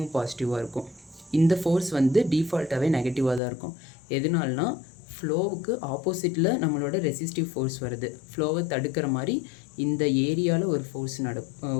பாசிட்டிவாக இருக்கும். இந்த ஃபோர்ஸ் வந்து டிஃபால்ட்டாகவே நெகட்டிவாக தான் இருக்கும். எதனால்னா ஃப்ளோவுக்கு ஆப்போசிட்டில் நம்மளோட ரெசிஸ்டிவ் ஃபோர்ஸ் வருது. ஃப்ளோவை தடுக்கிற மாதிரி இந்த ஏரியாவில் ஒரு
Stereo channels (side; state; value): right; drops out; at 3.4 s